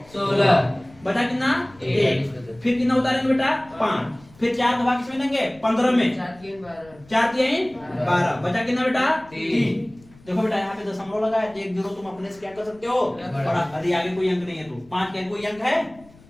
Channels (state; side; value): noise; left; rumble, 25 dB below the sound